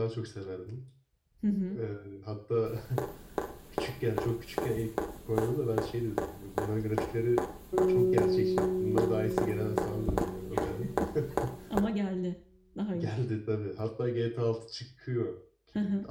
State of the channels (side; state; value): both; identical; correlation 1.00